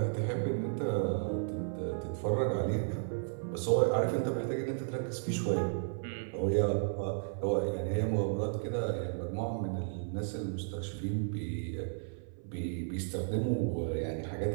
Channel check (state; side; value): silent; left; 55 dB below the other